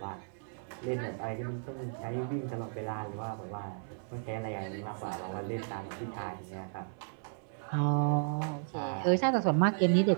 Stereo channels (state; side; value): silent; left; 55 dB below the other